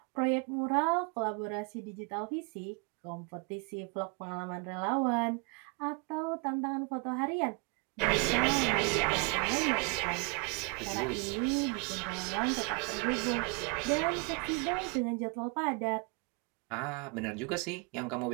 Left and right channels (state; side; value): quieter; left; 32.4 dB